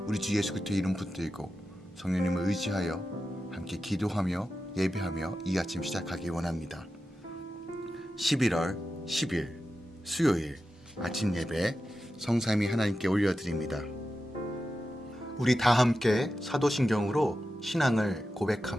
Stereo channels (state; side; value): normal; both; correlation 0.91